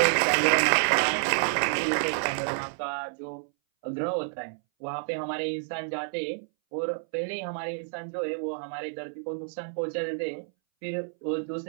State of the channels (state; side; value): silent; left; 59 dB below the other